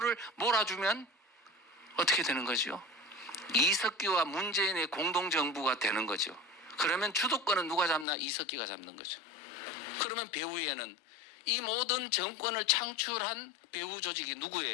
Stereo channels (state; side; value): drops out; right; at 8.1 s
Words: 몰아주면 어떻게 되는 거죠? 이석기와 문재인의 공동정부가 되는 거죠. 그러면 주도권은 누가 잡나? 이석기가 잡는 거죠. 그러면 배후에는 이 모든 정권을 창출한 배후 조직이